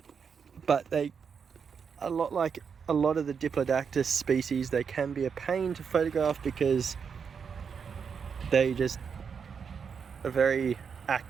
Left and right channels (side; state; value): left; quieter; 6.4 dB